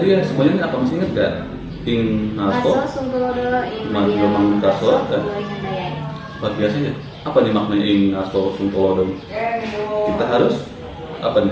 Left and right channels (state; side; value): identical; both; correlation 1.00